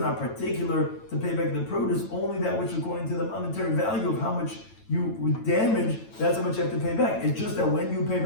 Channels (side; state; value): right; late; 9.0 ms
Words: particular to pay back the produce, only that which according to the monetary value of how much you would damage, that's how much you have to pay back. It's just that when you pay